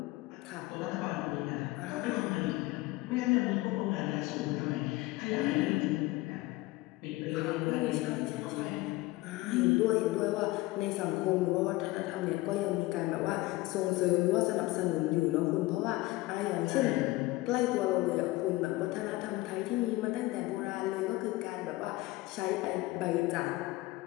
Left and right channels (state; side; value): quieter; right; 19.6 dB